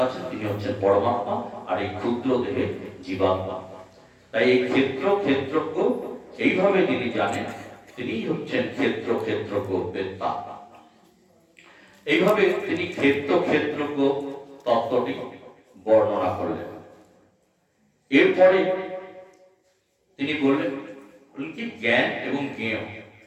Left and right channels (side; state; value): both; identical; correlation 1.00